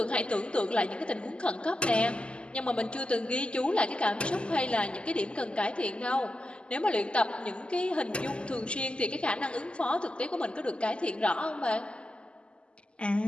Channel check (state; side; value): late; right; 0.052 ms